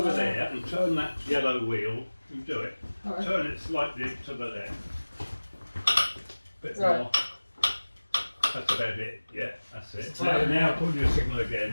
there and turn that yellow wheel. You do it. Right. Turn it slightly to the left. Bit Right. more. That's about it. Yeah, that's it. Now pull your signal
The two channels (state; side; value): inverted; both; correlation -1.00